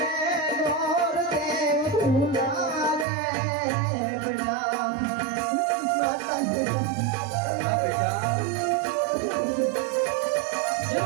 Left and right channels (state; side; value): drops out; left; at 3.1 s